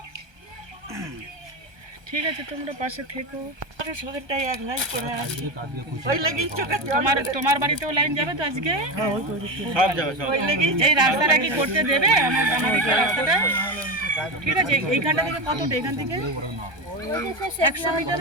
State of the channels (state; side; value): late; left; 1.2 ms